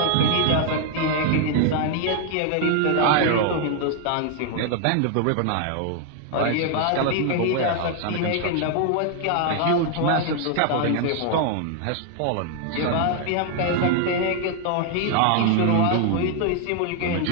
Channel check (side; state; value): both; different; correlation 0.00